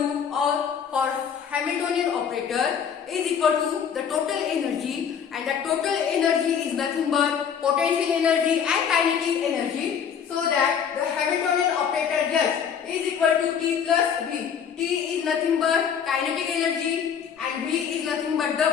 or for Hamiltonian operator is equal to the total energy, and the total energy is nothing but potential energy and kinetic energy. So that the Hamiltonian operator S is equal to T plus V. T is nothing but kinetic energy and V is nothing but the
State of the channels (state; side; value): quieter; right; 7.5 dB